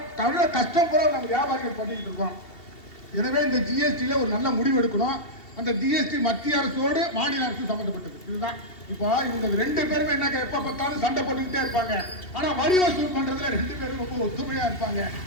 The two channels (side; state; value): right; late; 2.7 ms